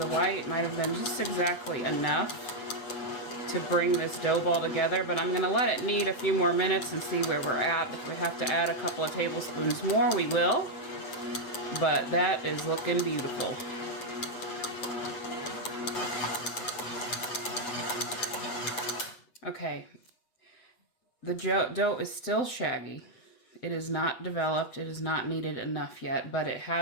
white might have been just exactly enough to bring this dough ball together, but I'm going to let it knead a few more minutes and see where we're at. If we have to add a couple of tablespoons more, we will, but that is looking beautiful. Okay, the dough is still shaggy. It is not developed, it is not kneaded enough yet, but it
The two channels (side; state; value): right; late; 7.8 ms